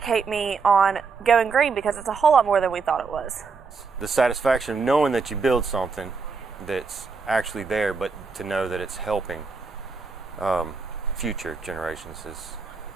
me on going green, because it's a whole lot more than we thought it was. The satisfaction of knowing that you build something that's actually there, but to know that it's helping future generations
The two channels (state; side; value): quieter; left; 4.9 dB